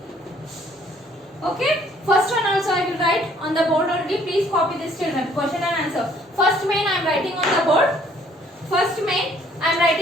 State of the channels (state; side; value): normal; both; correlation 0.61